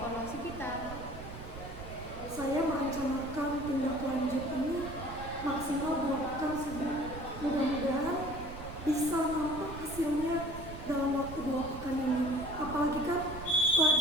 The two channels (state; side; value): noise; right; rumble, 11 dB below the sound